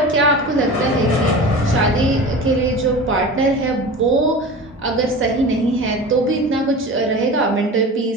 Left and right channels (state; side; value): normal; both; correlation 0.34